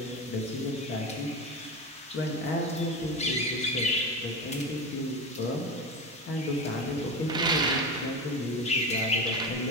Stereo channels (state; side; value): normal; both; correlation 0.22